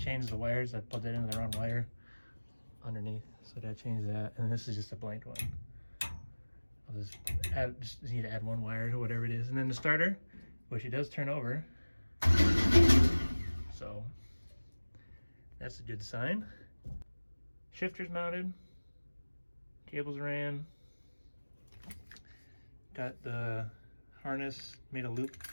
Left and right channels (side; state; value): both; inverted; correlation -1.00